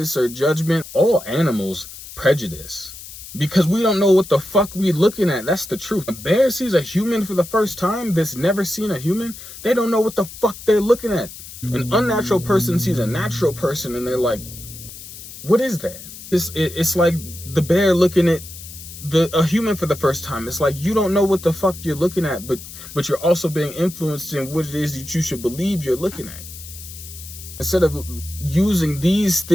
or judgment. All animals prejudice because we don't know what the fuck we looking at. That's the truth. A bear sees a human for the first time that's never seen a human. They don't know what the fuck they're looking at. An unnatural person sees a natural person and they're like, what is that? It's like the bear looking at a human for the first time. It's like you don't know what the fuck you're looking at, but you're also being influenced in what it is that you should believe you're looking at. Instead of using these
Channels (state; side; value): noise; left; hiss, 14 dB below the sound